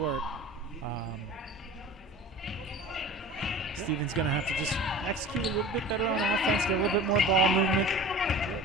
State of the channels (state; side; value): normal; both; correlation 0.38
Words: Stevens going to have to just execute a little bit better on offense, get a little bit more ball movement.